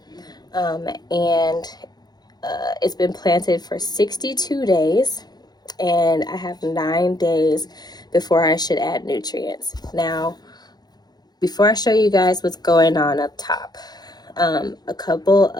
and it's been planted for 62 days, and I have 9 days before I should add nutrients. Now, before I show you guys what's going on up top, a couple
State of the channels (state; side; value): late; right; 0.19 ms